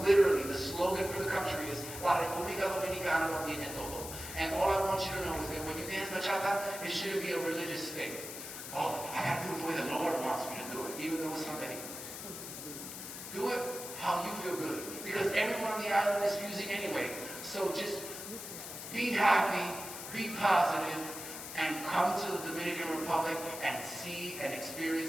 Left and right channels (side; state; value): left; noise; hiss, 9 dB below the sound